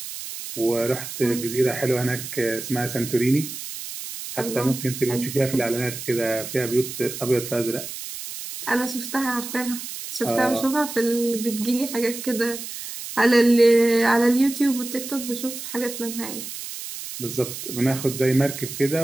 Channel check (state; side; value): noise; right; hiss, 9 dB below the sound